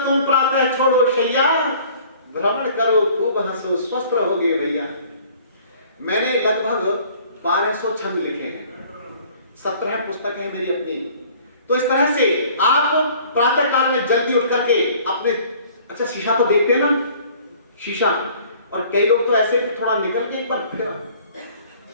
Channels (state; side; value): inverted; both; correlation -0.53